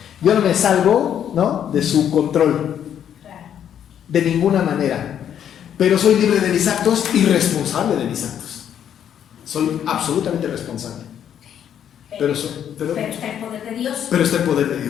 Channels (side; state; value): right; quieter; 9.4 dB